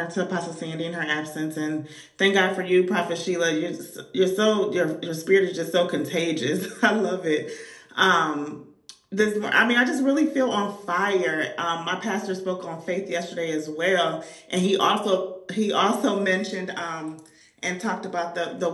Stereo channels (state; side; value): identical; both; correlation 1.00